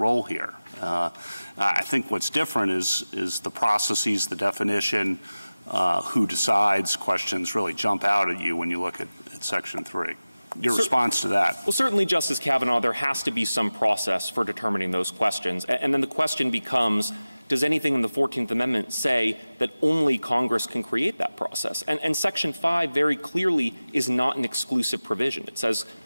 here. I think what's different is the processes, the definition, who decides questions really jump out at you when you look at Section 3. Your response to that? Well, certainly, Justice Kavanaugh, there has to be some process for determining those questions. And then the question becomes, does anything in the 14th Amendment say that only Congress can create that process? And Section 5 very clearly is not an exclusive provision. It says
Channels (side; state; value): both; inverted; correlation -0.97